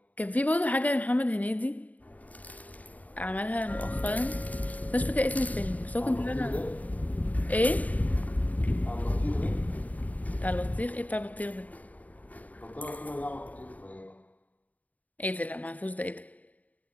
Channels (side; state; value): right; late; 0.073 ms